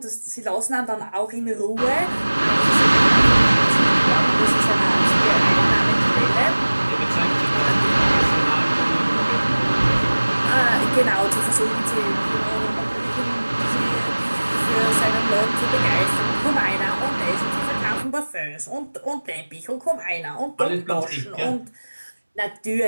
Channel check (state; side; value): inverted; both; correlation -1.00